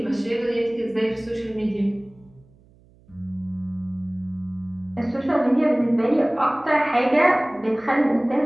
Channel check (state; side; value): noise; right; hum, 29 dB below the sound